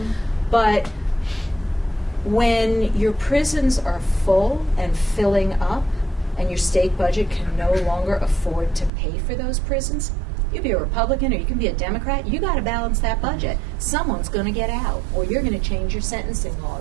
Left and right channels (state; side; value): drops out; left; at 8.9 s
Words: But when your prisons are full and filling up, and your state budget can no longer afford to pay for those prisons, you can be a Republican or you can be a Democrat, you got to balance that budget. Someone's going to get out, or you're going to change your sentencing